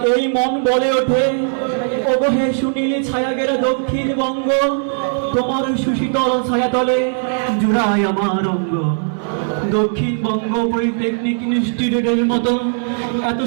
এই মন বলে ওঠে, ওগো হে সুনীল ছায়াগেরা দক্ষিণবঙ্গ, তোমার সুশীতল ছায়াতলে জুড়ায় আমার অঙ্গ। দক্ষিণবঙ্গ পলিটেকনিক ইনস্টিটিউটের মতো এত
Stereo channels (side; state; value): left; silent; digital silence